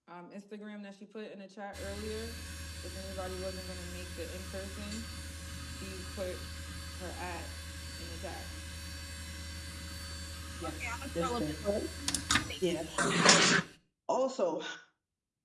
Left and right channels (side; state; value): both; identical; correlation 1.00